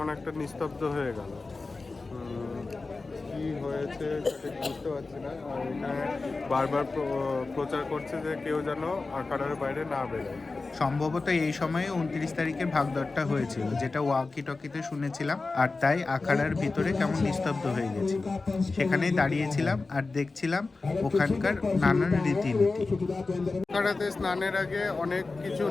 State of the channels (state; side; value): quieter; right; 3.7 dB